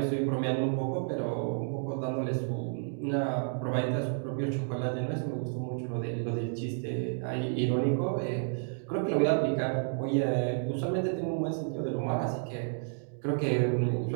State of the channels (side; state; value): left; silent; digital silence